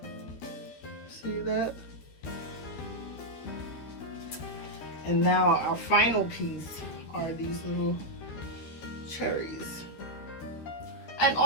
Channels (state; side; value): late; right; 13 ms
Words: see that? And now our final piece are these little cherries. And